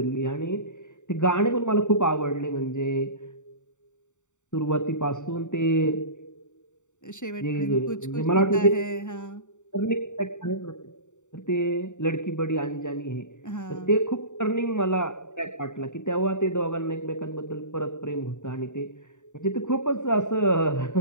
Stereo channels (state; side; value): late; right; 0.85 ms